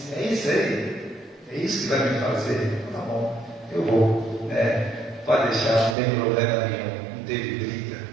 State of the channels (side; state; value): left; drops out; at 6.0 s